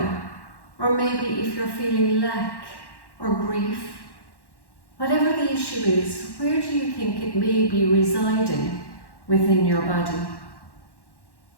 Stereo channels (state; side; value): late; right; 1.1 ms